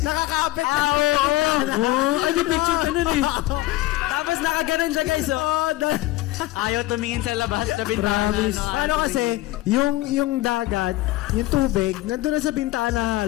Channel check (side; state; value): right; quieter; 17.0 dB